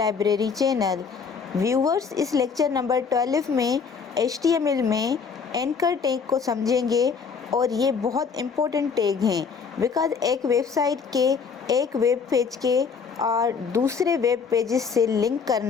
channel. Viewers, इस लेक्चर नंबर 12 में HTML में एंकर टैग को समझेंगे और ये बहुत इम्पोर्टेंट टैग हैं बिकॉज़ एक वेबसाइट के एक वेब पेज के और दूसरे वेब पेजेस से लिंक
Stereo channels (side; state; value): right; quieter; 5.8 dB